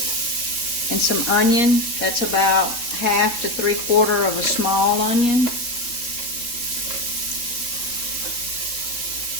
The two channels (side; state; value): right; late; 3.7 ms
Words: some onion. That's about 1/2 to 3/4 of a small onion.